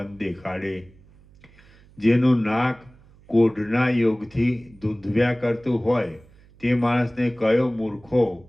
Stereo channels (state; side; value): noise; right; hum, 27 dB below the sound